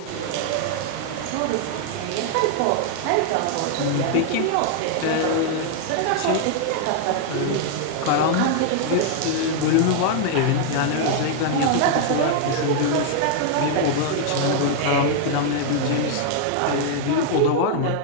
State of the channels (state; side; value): different; both; correlation 0.00